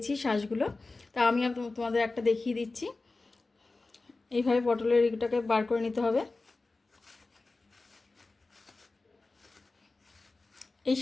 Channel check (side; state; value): right; quieter; 3.5 dB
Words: শাঁসগুলো। তা আমি তোমাদের একটা দেখিয়ে দিচ্ছি। এইভাবে পটলের এটাকে বার করে নিতে হবে। এই